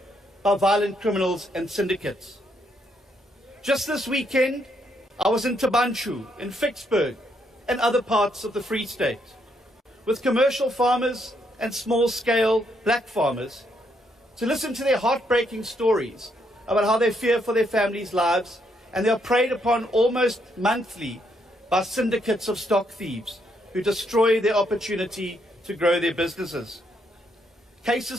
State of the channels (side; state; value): both; normal; correlation 0.75